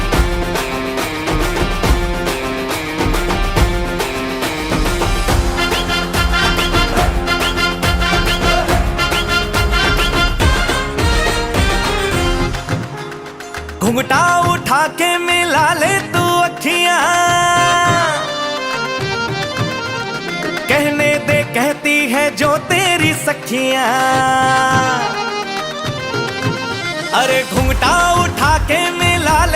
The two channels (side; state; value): both; identical; correlation 1.00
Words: घुंघटा उठा के मिला ले तू अखियां कहने दे कहती है जो तेरी सखियां अरे घुंघटा उठा के मिला